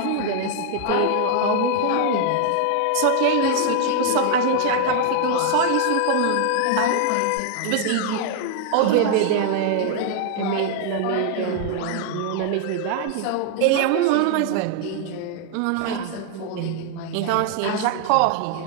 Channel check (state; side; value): different; both; correlation 0.00